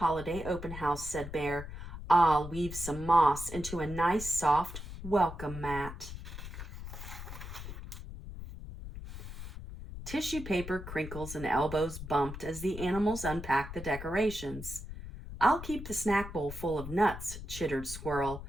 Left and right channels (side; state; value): left; noise; rumble, 10 dB below the sound